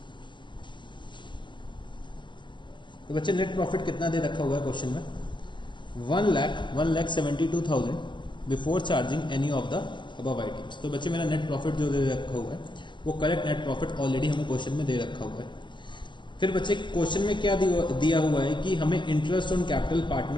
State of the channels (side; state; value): right; late; 0.23 ms